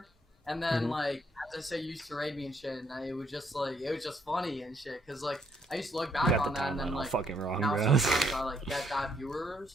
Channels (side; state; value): both; normal; correlation 0.71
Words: And then, like, as I say, you used to raid me and shit. And it was just funny and shit. Because, like, I used to look You back got on the that and then, timeline all like, fucking wrong, now bro. sometimes I, like, get that